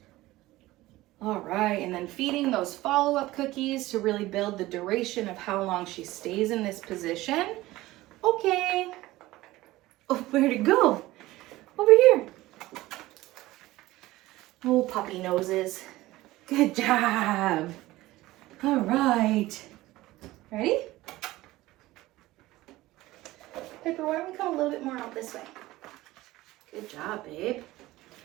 All right, and then feeding those follow-up cookies to really build the duration of how long she stays in this position. Okay. Oh, where'd it go? Over Oh, puppy noses. Good job. All right. Ready? Piper, why don't we come a little bit more out this way? Good job, babe.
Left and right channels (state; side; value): quieter; left; 17.7 dB